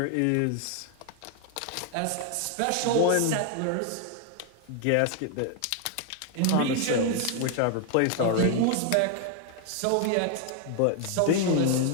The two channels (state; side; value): different; both; correlation 0.00